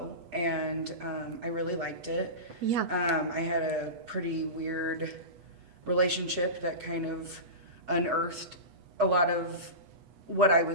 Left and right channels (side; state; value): left; late; 8.2 ms